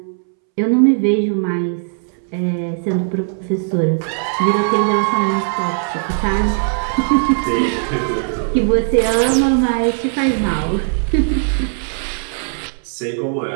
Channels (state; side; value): silent; left; 67 dB below the other